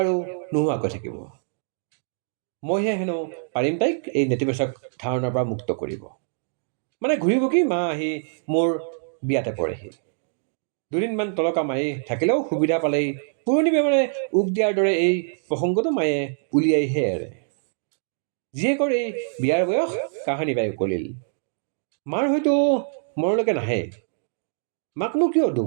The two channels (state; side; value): silent; left; digital silence